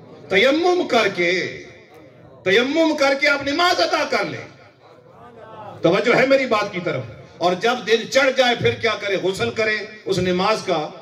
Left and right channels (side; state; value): both; identical; correlation 1.00